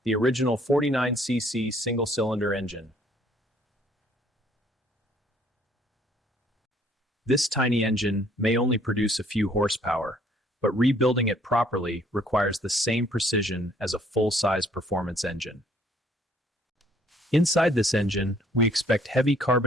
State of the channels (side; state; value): both; normal; correlation 0.61